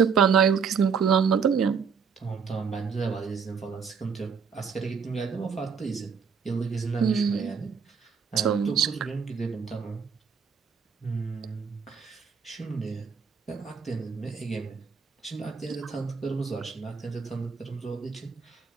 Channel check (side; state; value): left; quieter; 6.1 dB